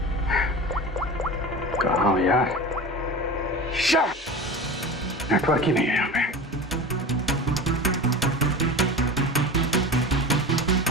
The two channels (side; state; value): both; normal; correlation 0.31